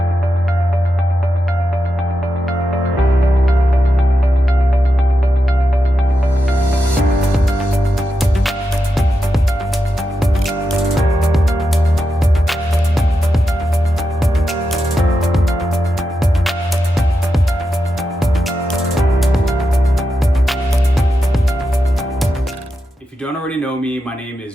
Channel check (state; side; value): normal; both; correlation 0.87